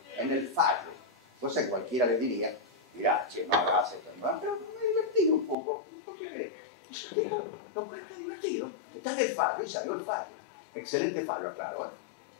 en el fallo. Entonces cualquiera le diría, mirá, che, no hagas esto, pero me he divertido un poco. ¿Por qué crees? Lo cual está divertido. Está en el fallo y salió el fallo. Excelente fallo, aclaro,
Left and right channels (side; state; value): right; drops out; at 5.6 s